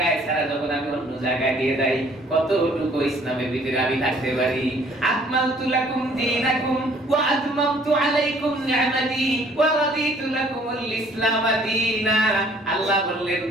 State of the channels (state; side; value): normal; both; correlation 0.59